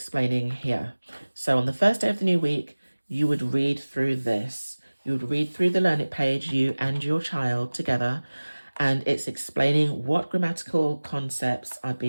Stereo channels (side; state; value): both; inverted; correlation -1.00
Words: here. So on the first day of the new week, you would read through this. You would read through the Learn It page, you and your child together, and it's explaining what grammatical concepts are